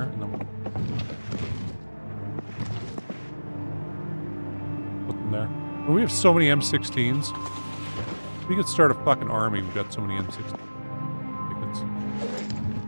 and then we'll put them there. Well, we have so many M16s. We could start a fucking army. We've got so many M16s. Like it's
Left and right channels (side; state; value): both; inverted; correlation -1.00